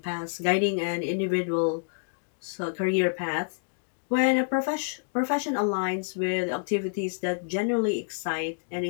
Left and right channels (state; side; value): silent; right; digital silence